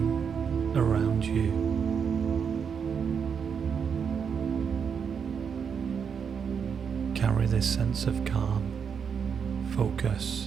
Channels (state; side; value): quieter; left; 6.8 dB